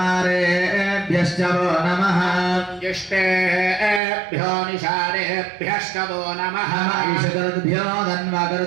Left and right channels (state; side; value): drops out; left; at 4.0 s